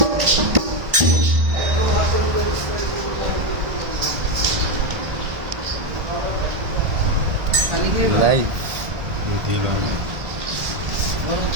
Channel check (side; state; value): left; late; 1.5 ms